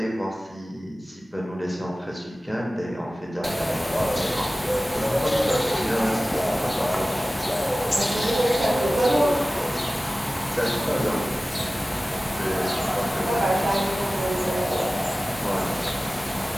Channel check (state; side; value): normal; both; correlation 0.97